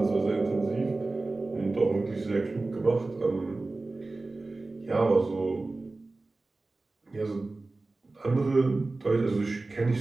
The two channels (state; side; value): quieter; left; 3.3 dB